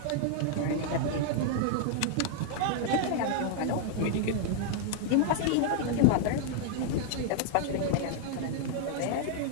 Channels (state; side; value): different; both; correlation -0.01